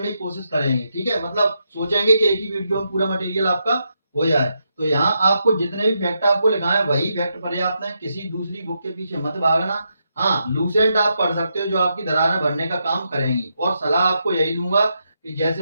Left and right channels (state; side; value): inverted; both; correlation -0.83